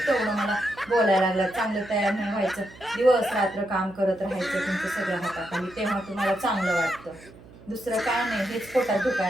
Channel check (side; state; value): right; noise; hum, 21 dB below the sound